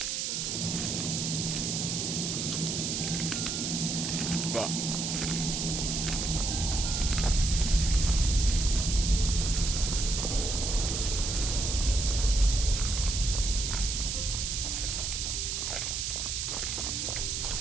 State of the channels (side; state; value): right; noise; hiss, 1 dB below the sound